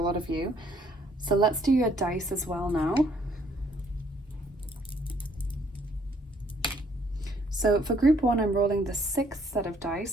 lot of you. So let's do your dice as well now. So for group 1, I'm rolling the 6th set of dice.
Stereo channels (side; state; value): both; normal; correlation 0.65